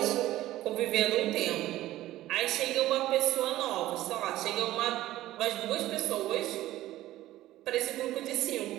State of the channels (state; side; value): quieter; left; 15.2 dB